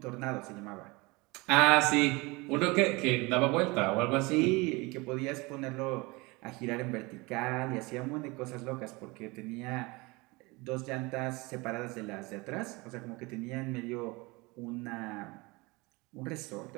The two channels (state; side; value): quieter; left; 24.7 dB